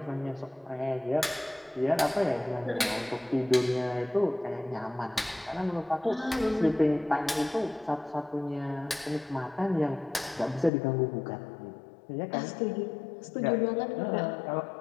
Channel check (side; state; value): right; drops out; at 10.7 s